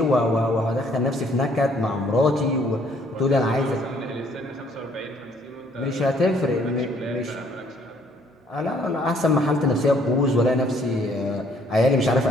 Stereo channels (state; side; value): normal; both; correlation 0.63